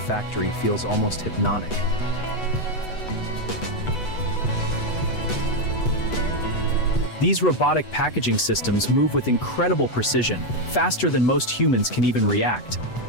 feels almost hypnotic. These robotic packaging systems move with incredible precision, faster than most humans can even react.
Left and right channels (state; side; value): late; right; 8.0 ms